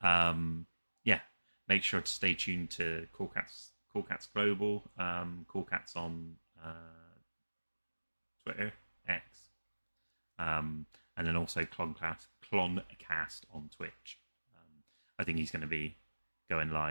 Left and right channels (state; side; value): inverted; both; correlation -1.00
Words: make sure to stay tuned to Cool Cats Global, Cool Cats on Twitter, X, and then also Cloncast on Twitch. I think he's going to be going